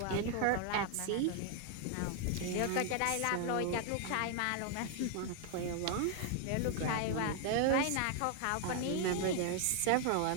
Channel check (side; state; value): both; different; correlation 0.00